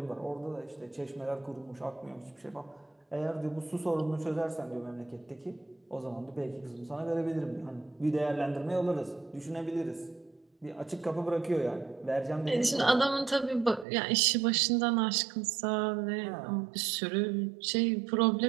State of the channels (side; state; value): left; drops out; at 13.9 s